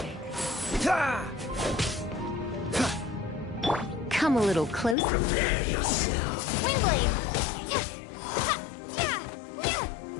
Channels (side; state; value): right; drops out; at 5.0 s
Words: Come a little closer. Prepare yourself. Windblade!